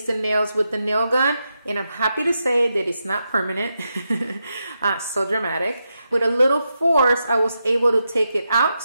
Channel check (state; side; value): inverted; both; correlation -0.86